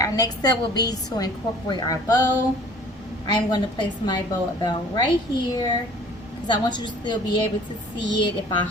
next step will be to incorporate our bow. I'm going to place my bow about right here, because I want you to still be able to see it if I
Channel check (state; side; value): normal; both; correlation 0.50